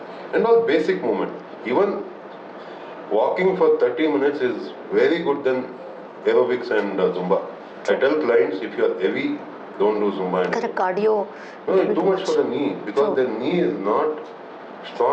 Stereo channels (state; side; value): identical; both; correlation 1.00